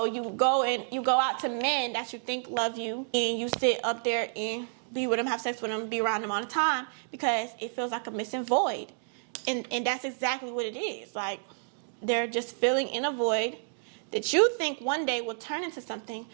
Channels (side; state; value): left; silent; digital silence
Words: you go out to men that you think love you, and you sit up there and be with them, have sex with them, be around them all the time because it feels like a missing void. And that's exactly what it is. Like, they're just filling in a void that you think one day will turn into something